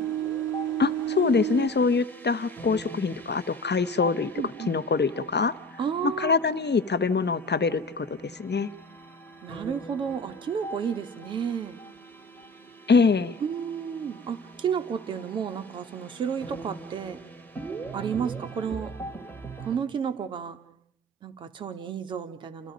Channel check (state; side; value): normal; both; correlation 0.38